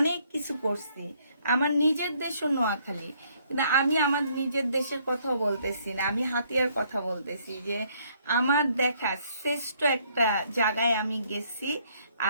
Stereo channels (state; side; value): inverted; both; correlation -0.66